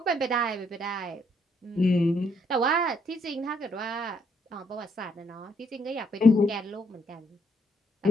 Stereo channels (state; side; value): normal; both; correlation 0.71